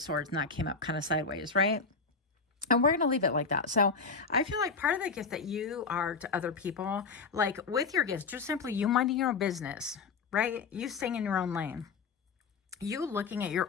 Swords, and that came up kind of sideways, right? And we're going to leave it like that. So I feel like part of the gift that you are to other people, like with your gifts, just simply you minding your own business, right? You staying in your own lane. You looking at your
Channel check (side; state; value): right; quieter; 4.8 dB